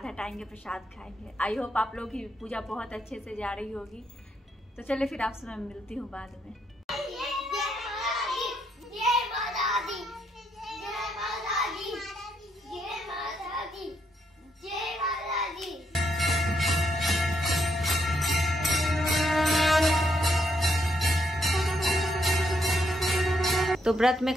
हटाएंगे, प्रसाद खाएंगे। आई होप आप लोग की पूजा बहुत अच्छे से जा रही होगी। तो चलिए फिर आपसे मैं मिलती हूँ बाद में। तो व्रत में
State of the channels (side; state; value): both; normal; correlation 0.76